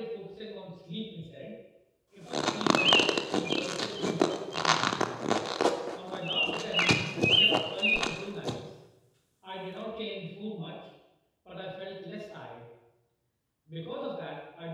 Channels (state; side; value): identical; both; correlation 1.00